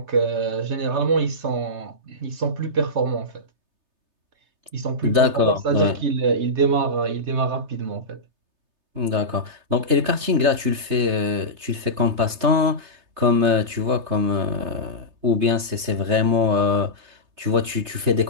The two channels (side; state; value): left; late; 3.3 ms